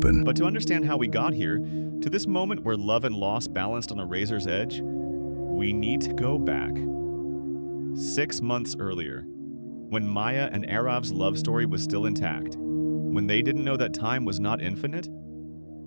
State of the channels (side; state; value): both; inverted; correlation -1.00